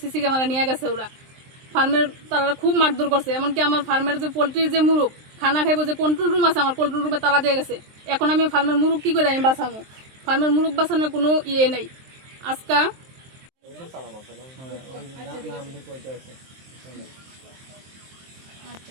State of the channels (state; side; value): late; left; 23 ms